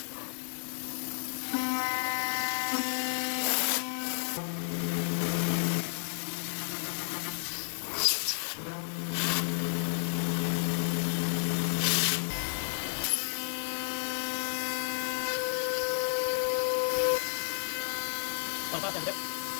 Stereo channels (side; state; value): right; silent; digital silence